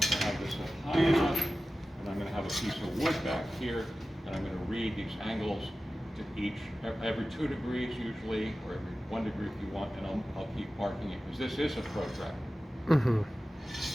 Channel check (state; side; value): normal; both; correlation 0.95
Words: have this high enough, and I'm going to have a piece of wood back here, and I'm going to read these angles to each, every 2 degrees usually, or every 1 degree if you want, and I'll keep marking it, because this is a protractor.